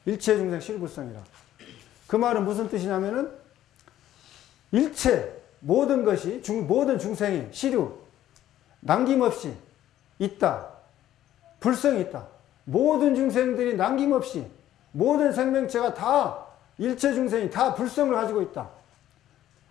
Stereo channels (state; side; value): quieter; right; 12.6 dB